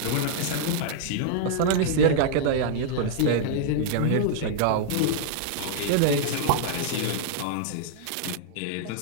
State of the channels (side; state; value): both; different; correlation -0.01